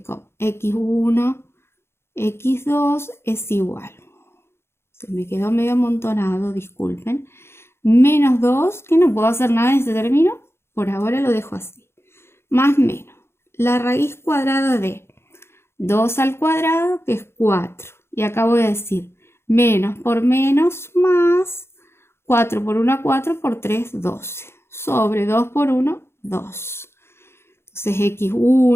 x1, x2 es igual. Se me quedó medio amontonado, disculpen. Menos 2, que no puedo hacer nada en este término. Por ahora lo dejo así. Más menos. La raíz cuadrada de 2 al cuadrado, que es 4. Y acá voy a decir menos por menos más 4 por 1, 4 por 3, 12. Sobre 2 por 1, 2. Entonces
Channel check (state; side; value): late; right; 0.12 ms